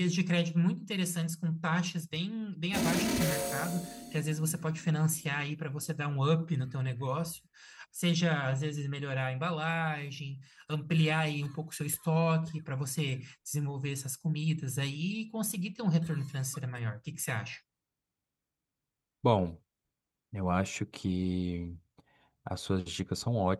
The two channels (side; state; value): both; identical; correlation 1.00